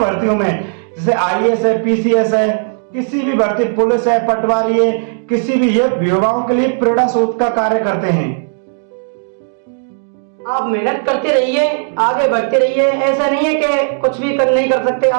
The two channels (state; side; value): silent; left; digital silence